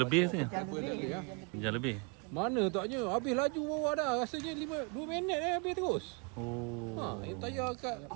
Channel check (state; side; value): quieter; left; 31.8 dB